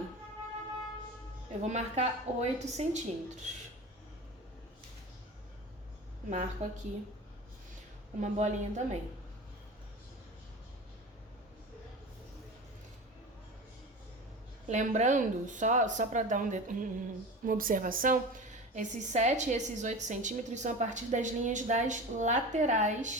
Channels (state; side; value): normal; both; correlation 0.31